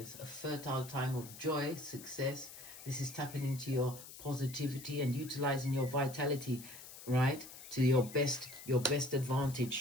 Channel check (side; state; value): left; noise; hiss, 15 dB below the sound